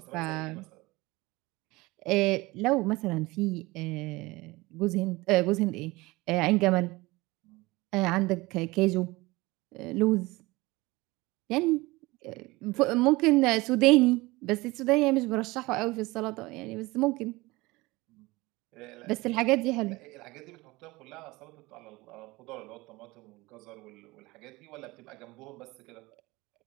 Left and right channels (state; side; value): quieter; left; 21.7 dB